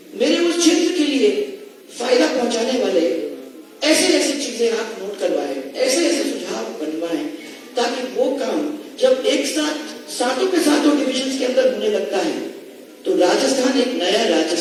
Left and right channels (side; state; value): both; identical; correlation 1.00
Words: मेरे उस क्षेत्र के लिए फायदा पहुंचाने वाले ऐसे चीजें आप नोट करवाएं, ऐसे सुझाव बनवाएं, ताकि वो काम जब एक साथ सातों के सातों डिविजन के अंदर होने लगता है तो राजस्थान एक नया